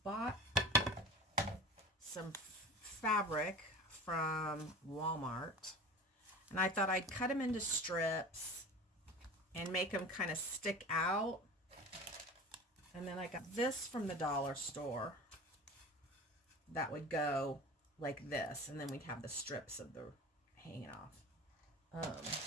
bought some fabric from Walmart, and I thought I'd cut them into strips and make them kind of stick out. And then I got this from the dollar store that would go like this, and then we'd have the strips of the hanging off.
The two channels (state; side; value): normal; both; correlation 0.35